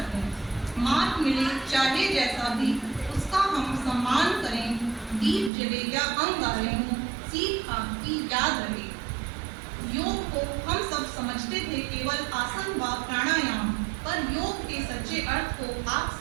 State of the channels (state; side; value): drops out; left; at 5.5 s